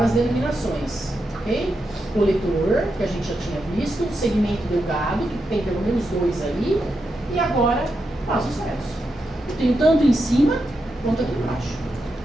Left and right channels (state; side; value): normal; both; correlation 0.85